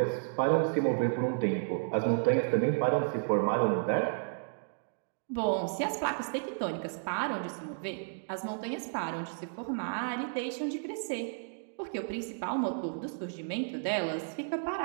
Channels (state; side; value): silent; left; digital silence